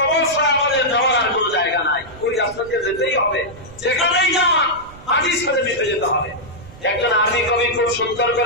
ছাড়া আমাদের যাওয়ার আর কোন জায়গা নাই, ওই রাস্তা দিয়ে যেতেই হবে। যেখানেই যান মাটির সাথে মিশে যেতে হবে। একজন আরবি কবি খুব সুন্দর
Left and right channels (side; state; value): right; noise; rumble, 20 dB below the sound